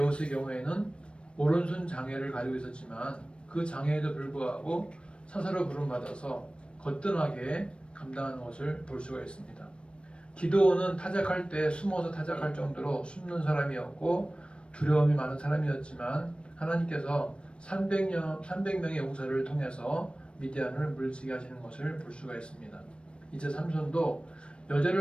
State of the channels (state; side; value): late; right; 0.058 ms